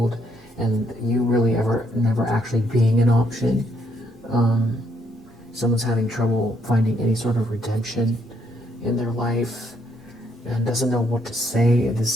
and you really never actually being an option. Someone's having trouble finding any sort of redemption in their life and doesn't know what to say.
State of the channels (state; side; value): normal; both; correlation 0.72